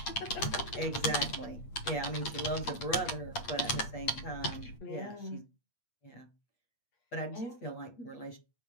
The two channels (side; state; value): right; late; 8.5 ms